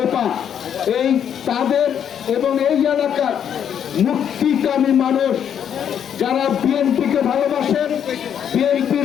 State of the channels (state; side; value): quieter; right; 8.8 dB